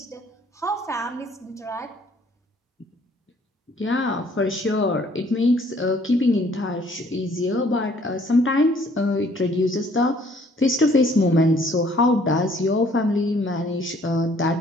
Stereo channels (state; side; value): normal; both; correlation 0.61